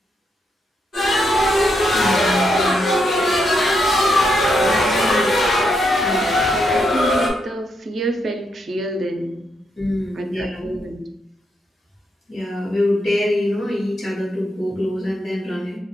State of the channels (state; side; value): normal; both; correlation 0.80